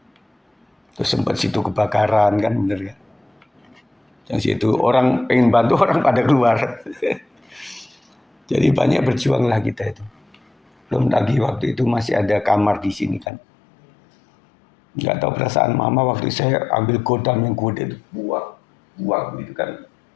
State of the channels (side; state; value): right; drops out; at 13.2 s